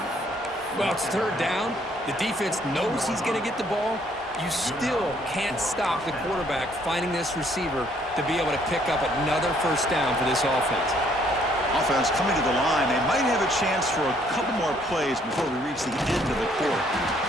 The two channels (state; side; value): normal; both; correlation 0.65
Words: Well, it's 3rd down. The defense knows he's going to get the ball. You still can't stop the quarterback finding this receiver to be able to pick up another first down for this offense. Offense coming to the line. They might have a chance for a couple more plays before we reach the end of the quarter.